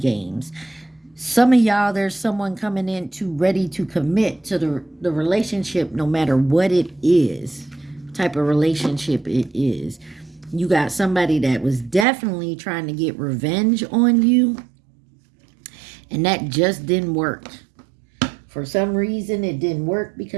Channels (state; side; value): drops out; left; at 12.1 s